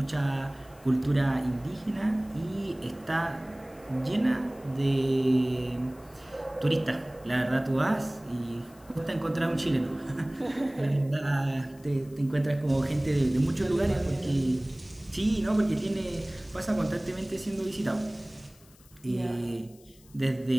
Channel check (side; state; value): left; noise; hiss, 27 dB below the sound